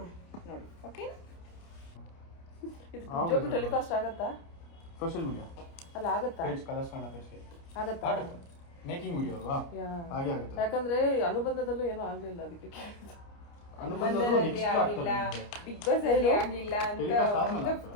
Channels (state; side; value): late; right; 29 ms